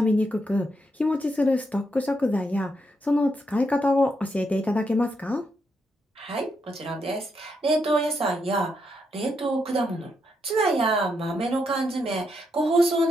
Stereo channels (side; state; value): both; normal; correlation 0.80